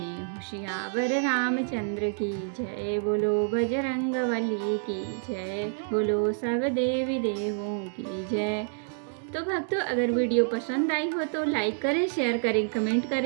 सियावर रामचंद्र की जय, बोलो बजरंगबली की जय, बोलो सब देवी देवों की जय। तो भक्तों, अगर वीडियो पसंद आई हो तो लाइक करें, शेयर करें, कमेंट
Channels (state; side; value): silent; left; digital silence